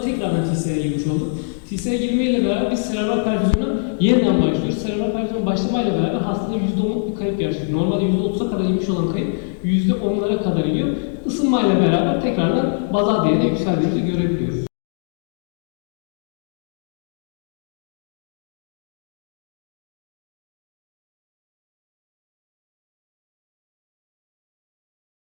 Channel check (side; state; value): right; silent; digital silence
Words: tekrardan TCA'ya girmiş olduk. TCA'ya girmeyle beraber biz serebral perfüzyona yeniden başlıyoruz. Serebral perfüzyon başlamayla beraber hastada %10'luk bir kayıp gerçekleşiyor. Normalde %30'a kadar inmiş olan kayıp %10'lara kadar iniyor. Isınmayla beraber tekrardan bazal değerine yükseldiğimizi görebiliyoruz.